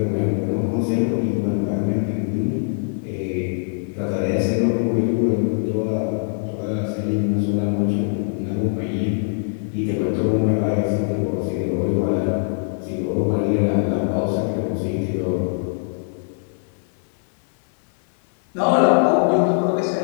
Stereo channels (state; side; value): silent; right; 64 dB below the other